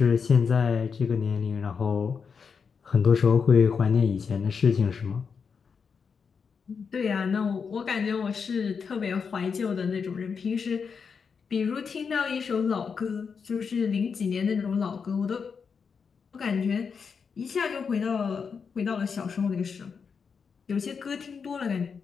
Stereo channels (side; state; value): right; quieter; 5.9 dB